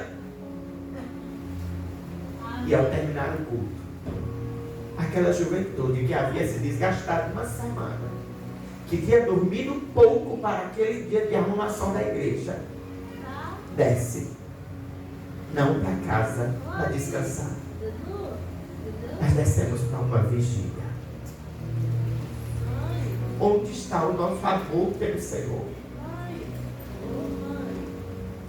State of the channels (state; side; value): identical; both; correlation 1.00